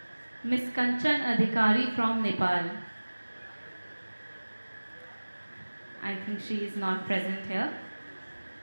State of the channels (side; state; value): both; inverted; correlation -1.00